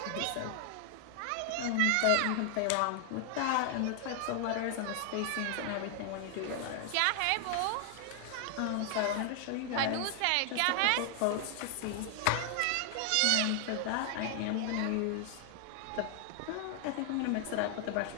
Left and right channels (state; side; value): different; both; correlation 0.00